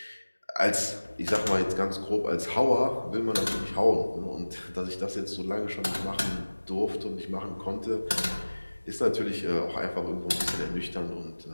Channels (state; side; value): inverted; both; correlation -1.00